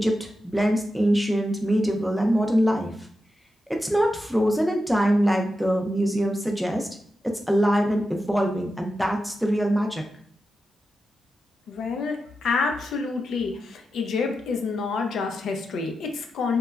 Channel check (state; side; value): normal; both; correlation 0.89